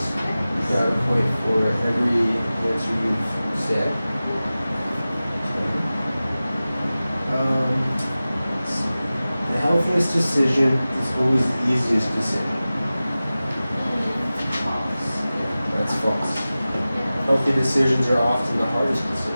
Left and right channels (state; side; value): inverted; both; correlation -0.96